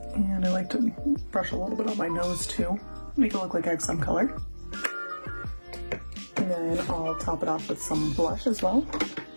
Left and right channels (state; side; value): inverted; both; correlation -1.00